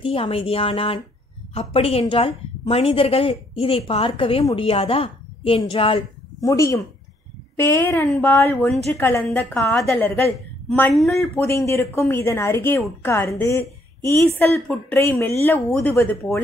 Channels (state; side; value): normal; both; correlation 0.69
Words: அமைதியானான். அப்படியென்றால் மனிதர்கள் இதை பார்க்கவே முடியாதா என்றாள். முடியும். பேரன்பால் ஒன்று கலந்த காதலர்கள் மண்ணுள் புதைந்திருக்கும் இதன் அருகே உட்கார்ந்து ஈசல் புற்றை மெல்ல ஊதுவது